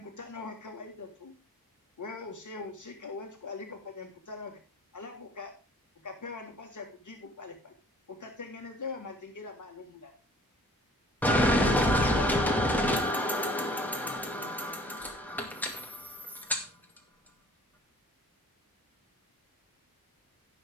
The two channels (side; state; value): both; normal; correlation 0.52